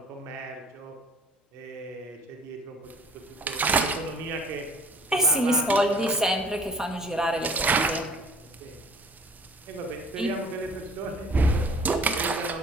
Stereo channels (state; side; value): normal; both; correlation 0.50